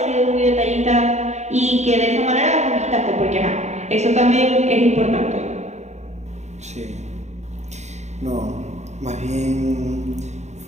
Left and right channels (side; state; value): left; late; 0.33 ms